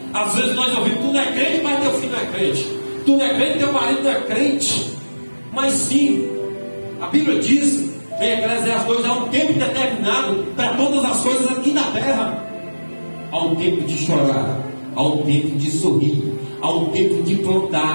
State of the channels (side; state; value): both; inverted; correlation -1.00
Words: Às vezes nós ouvimos: tu não é crente, mas teu filho não é crente. Tu não é crente, teu marido não é crente. Mas sim, a Bíblia diz em Eclesiastes 2: há um tempo determinado para todas as coisas aqui na terra. Há um tempo de chorar, há um tempo de sorrir, há um tempo de